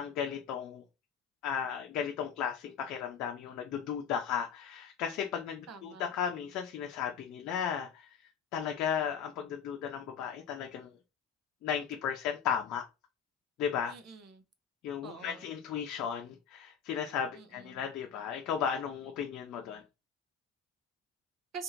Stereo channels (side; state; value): right; quieter; 7.5 dB